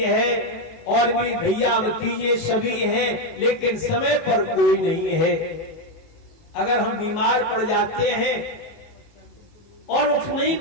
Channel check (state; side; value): late; right; 19 ms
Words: है, और भी भैया भतीजे सभी हैं, लेकिन समय पर कोई नहीं है। अगर हम बीमार पड़ जाते हैं और उठ नहीं